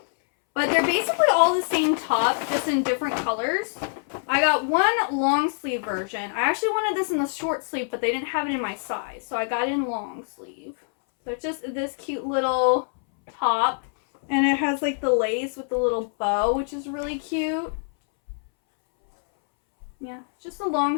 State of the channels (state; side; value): silent; right; 62 dB below the other